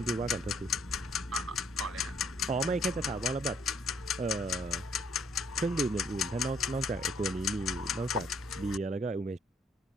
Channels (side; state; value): both; normal; correlation 0.65